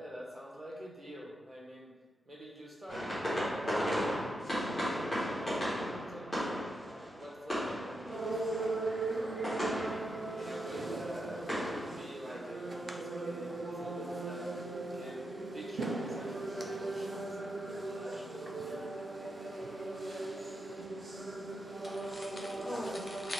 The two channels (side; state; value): both; normal; correlation 0.85